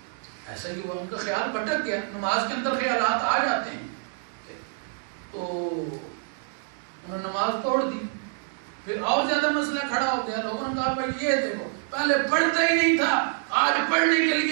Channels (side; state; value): left; silent; digital silence